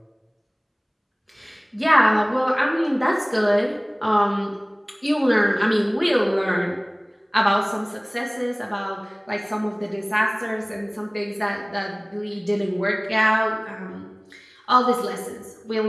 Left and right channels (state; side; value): identical; both; correlation 1.00